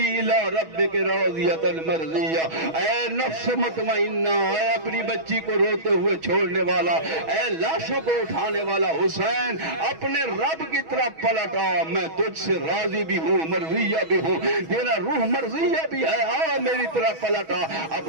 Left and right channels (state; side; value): late; left; 6.2 ms